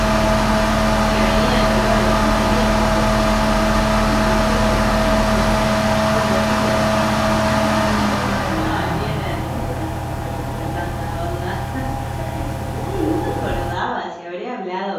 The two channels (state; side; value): identical; both; correlation 1.00